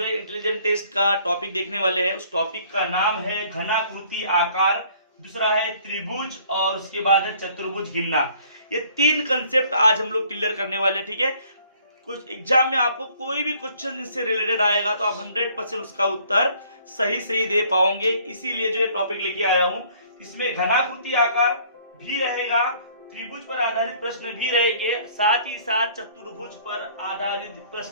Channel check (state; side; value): inverted; both; correlation -0.58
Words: है इंटेलिजेंट टेस्ट का टॉपिक देखने वाले हैं। उस टॉपिक का नाम है घनाकृति आकार, दूसरा है त्रिभुज और उसके बाद है चतुर्भुज गिनना। ये तीन कंसेप्ट आज हम लोग क्लियर करने वाले हैं। ठीक है, कुछ एग्जाम में आपको कोई भी क्वेश्चन इससे रिलेटेड आएगा तो आप 100% उसका उत्तर सही दे पाओगे। इसीलिए जो ये टॉपिक लेके आया हूं। इसमें घनाकृति आकार भी रहेगा, त्रिभुज पर आधारित प्रश्न भी रहेंगे, साथ ही साथ चतुर्भुज पर आधारित